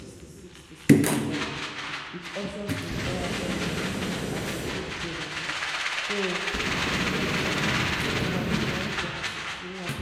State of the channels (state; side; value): identical; both; correlation 1.00